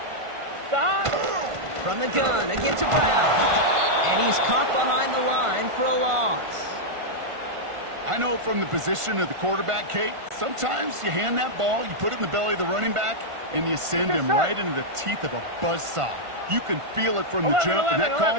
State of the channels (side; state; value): left; late; 1.5 ms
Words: From the gun, again to Brown. And he's caught behind the line for a loss. I know from the position of the quarterback, Kate, sometimes you hand that ball, you put it in the belly of the running back, and you send him right into the teeth of a buzzsaw. You can feel it from the jump, and that call